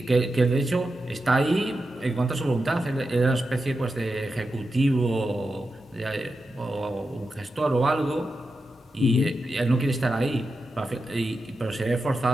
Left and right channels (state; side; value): normal; both; correlation 0.89